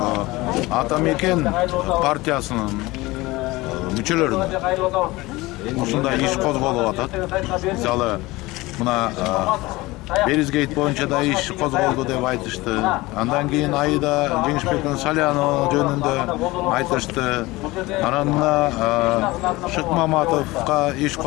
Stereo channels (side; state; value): right; quieter; 20.6 dB